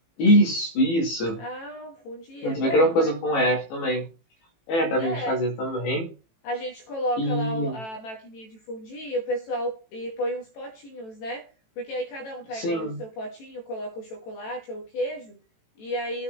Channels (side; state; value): right; late; 18 ms